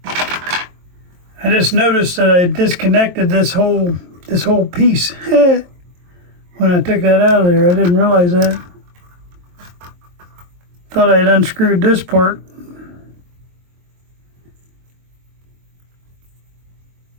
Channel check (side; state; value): left; late; 23 ms